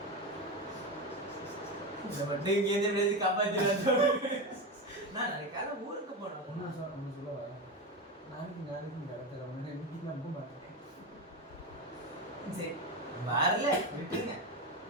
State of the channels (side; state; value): both; normal; correlation 0.18